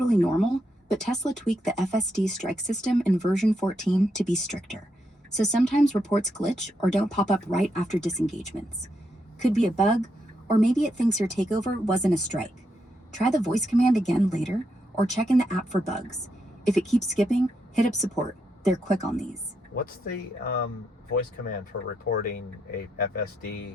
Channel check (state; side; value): normal; both; correlation 0.81